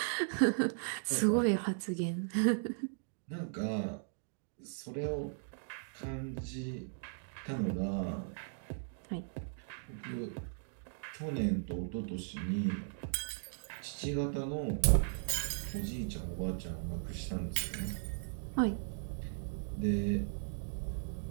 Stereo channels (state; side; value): silent; left; digital silence